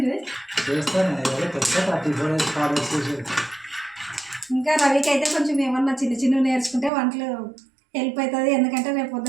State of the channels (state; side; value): drops out; left; at 6.9 s